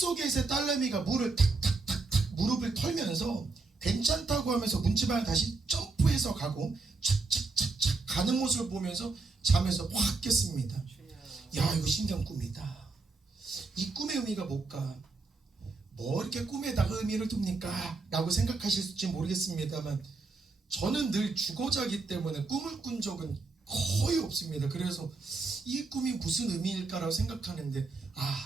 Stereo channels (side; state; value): left; quieter; 3.9 dB